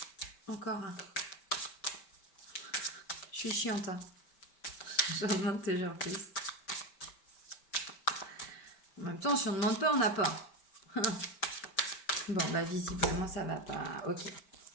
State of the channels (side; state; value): right; late; 5.1 ms